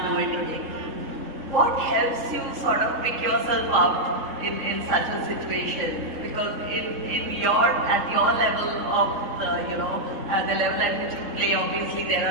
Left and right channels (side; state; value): left; late; 3.8 ms